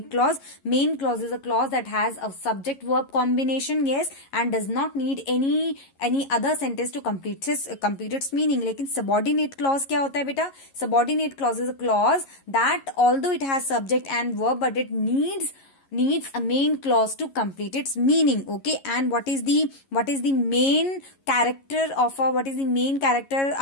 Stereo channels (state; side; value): late; right; 11 ms